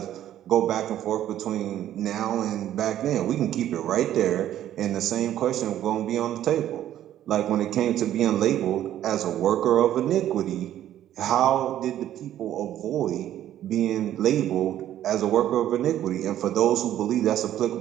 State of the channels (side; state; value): left; quieter; 11.9 dB